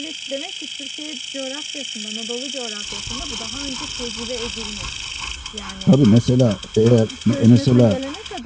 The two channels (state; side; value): identical; both; correlation 1.00